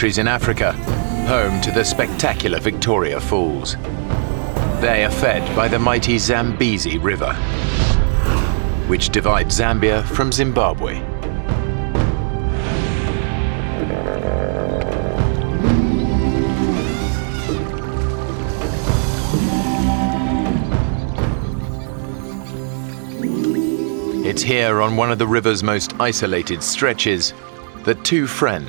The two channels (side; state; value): left; silent; digital silence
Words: in Africa, home to the spectacular Victoria Falls. They are fed by the mighty Zambezi River, which divides Zambia from Zimbabwe. It's here on one of the river's most isolated stretches that two